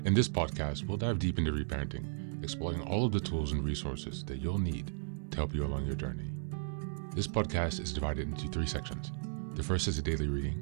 In this podcast, we'll dive deep into reparenting, exploring all of the tools and resources that you'll need to help you along your journey. This podcast is divided into 3 sections. The first is a daily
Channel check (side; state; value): left; silent; digital silence